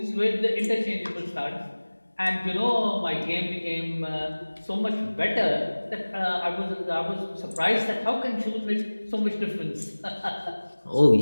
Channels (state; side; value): inverted; both; correlation -1.00